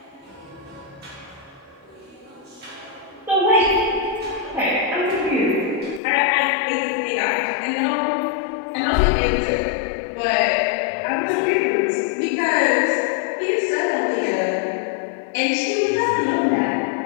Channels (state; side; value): drops out; right; at 6.0 s